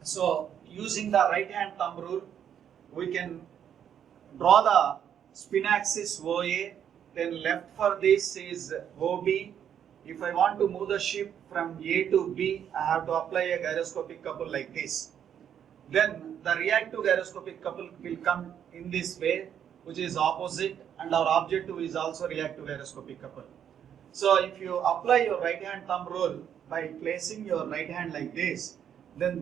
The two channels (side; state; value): left; quieter; 9.1 dB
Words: So using the right hand thumb rule, we can draw the spin axis OA, then left for this is OB. If I want to move the ship from A to B, I have to apply a gyroscopic couple like this. Then the reactive gyroscopic couple will come in this way, which is opposite, and our objective is also reactive gyroscopic couple. So if you apply your right hand thumb rule by placing your right hand like this, then